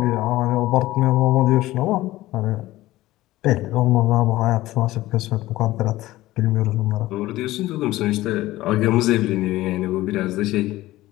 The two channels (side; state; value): right; quieter; 16.8 dB